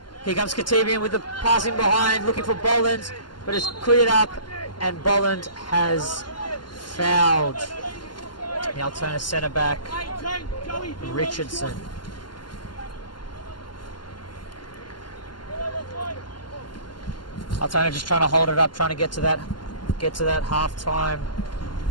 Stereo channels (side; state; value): right; late; 0.71 ms